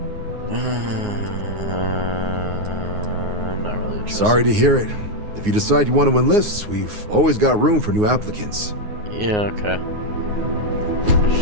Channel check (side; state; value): left; late; 9.6 ms